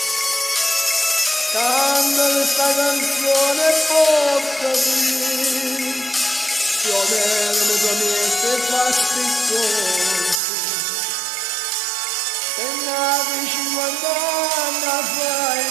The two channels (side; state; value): left; drops out; at 10.4 s